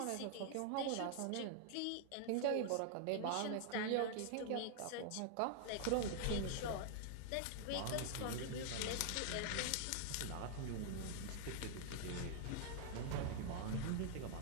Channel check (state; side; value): different; both; correlation 0.00